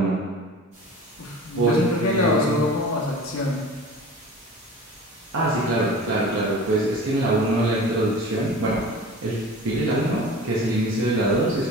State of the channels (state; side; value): normal; both; correlation 0.39